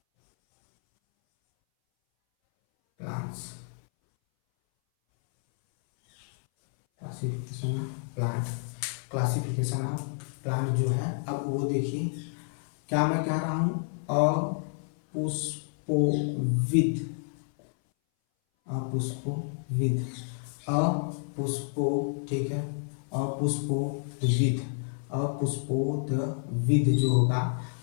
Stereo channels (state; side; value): silent; right; 58 dB below the other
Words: plants, classification of plant, classification of plant जो है, अब वो देखिए क्या मैं कह रहा हूँ, अपुष्पोविद, अपुष्पोविद, अपुष्पो, ठीक है, अपुष्पोविद, अपुष्पोदविद जो होगा,